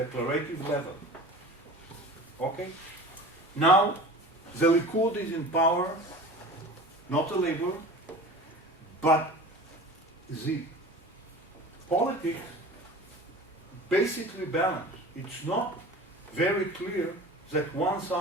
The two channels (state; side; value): normal; both; correlation 0.38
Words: level. Okay? Now, the Likud is in power, not the Labour, but the politics basically balanced. It's not very clear that one